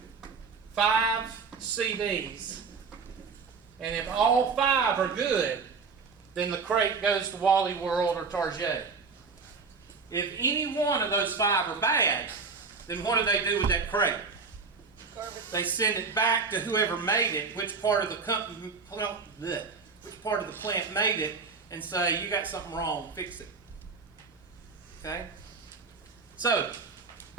5 CDs, and if all 5 are good, then the crate goes to Wally World or Target. If any one of those 5 are bad, then what do they do with that crate? Garbage. They send it back to whoever made it, which part of the company, which part of the plant made it, and say, you got something wrong, fix it. Okay? So,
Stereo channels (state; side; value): quieter; left; 4.9 dB